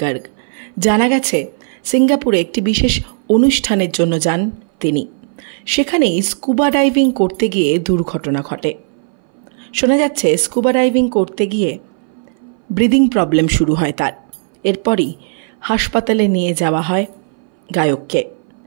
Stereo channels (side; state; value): left; silent; 63 dB below the other